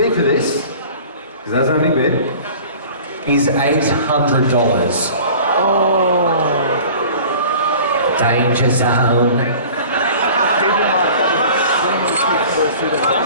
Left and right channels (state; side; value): inverted; both; correlation -0.44